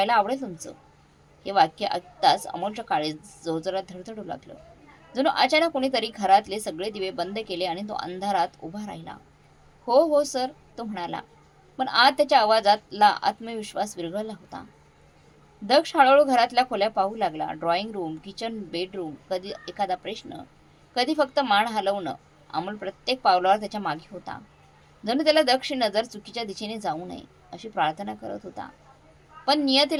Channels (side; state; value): both; identical; correlation 1.00